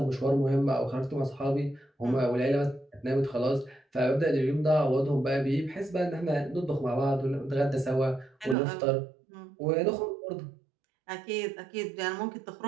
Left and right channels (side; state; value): left; drops out; at 8.6 s